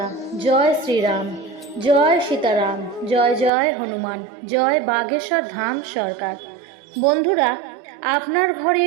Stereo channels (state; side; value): drops out; left; at 3.5 s